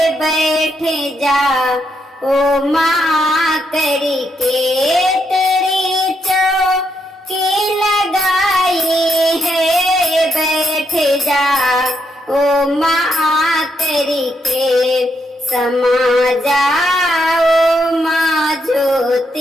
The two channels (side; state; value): both; normal; correlation 0.78